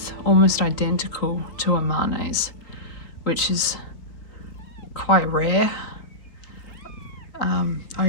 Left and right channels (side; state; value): right; late; 3.9 ms